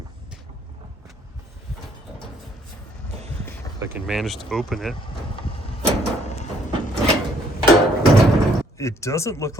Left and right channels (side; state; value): both; normal; correlation 0.64